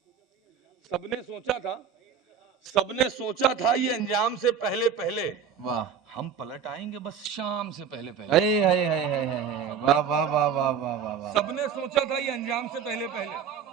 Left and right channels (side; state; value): left; quieter; 7.5 dB